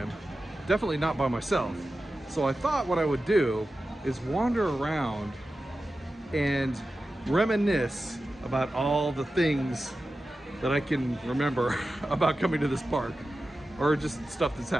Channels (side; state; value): both; normal; correlation 0.93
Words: definitely not by myself. So I thought what I would do is wander around and reminisce about all the things that I can remember about coming to this park, or just stuff that's